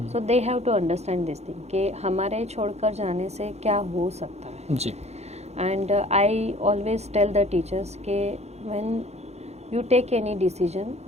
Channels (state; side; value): late; left; 0.31 ms